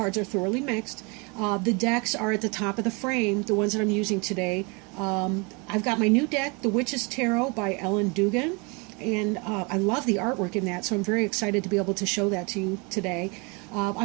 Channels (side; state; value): left; quieter; 30.3 dB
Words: are thoroughly mixed. The decks are at the top of the frame, the ones that I'm using today. I've got my new deck, The Witch's Tarot by Ellen Dugan, and I love the artwork in that, so I'm very excited to be able to show that to you today.